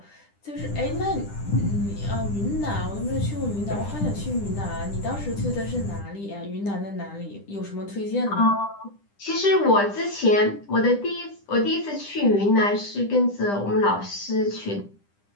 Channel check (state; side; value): late; right; 10 ms